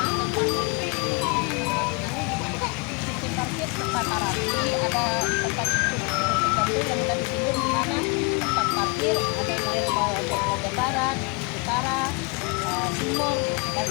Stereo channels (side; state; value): right; quieter; 30.3 dB